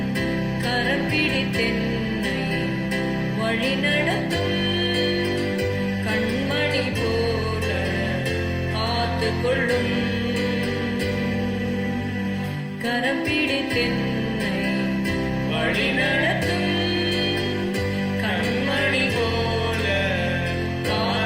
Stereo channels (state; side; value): identical; both; correlation 1.00